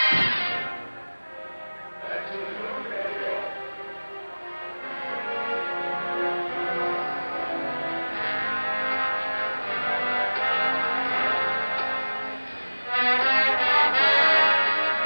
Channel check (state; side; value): inverted; both; correlation -1.00